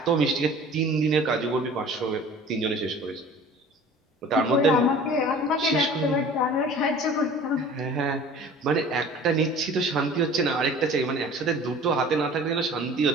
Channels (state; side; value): normal; both; correlation 0.45